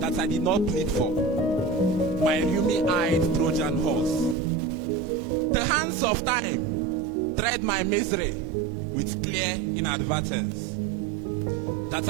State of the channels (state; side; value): drops out; left; at 4.4 s